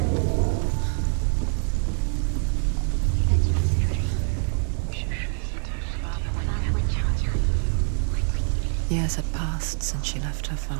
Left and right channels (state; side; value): silent; left; 57 dB below the other